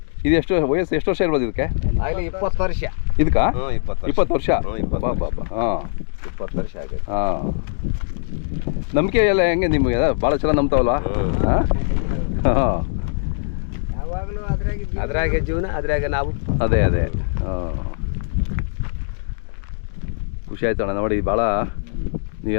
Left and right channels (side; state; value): right; silent; digital silence